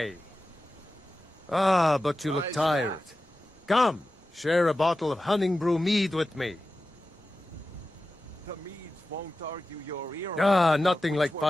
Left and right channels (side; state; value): both; normal; correlation 0.94